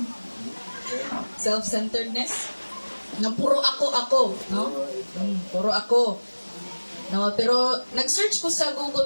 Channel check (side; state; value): both; inverted; correlation -1.00